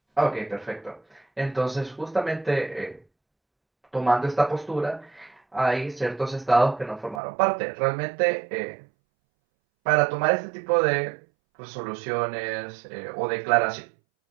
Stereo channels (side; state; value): left; drops out; at 7.2 s